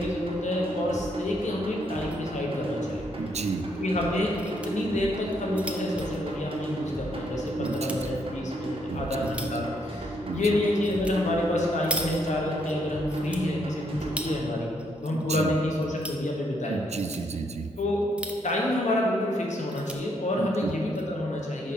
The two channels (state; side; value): normal; both; correlation 0.73